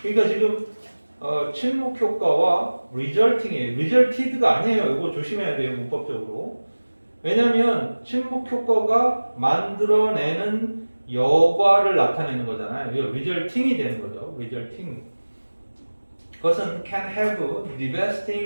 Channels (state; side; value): inverted; both; correlation -1.00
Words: 그러니까 지금 침묵 효과와 resulting이에요. resulted가 아니에요. 이거 조심해야 돼요, 문법적으로. 왜냐하면 침묵 효과가 만들어내는 여과를 나타내는 거잖아요. 이거 resulting이 되는 거죠. resulting. 그것은 can have